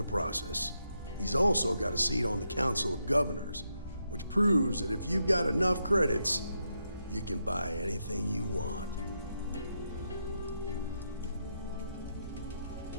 process. He's also got a seat on the Council of Governors, which proves that if you've got enough credits, you can buy anything you want.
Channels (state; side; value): inverted; both; correlation -0.82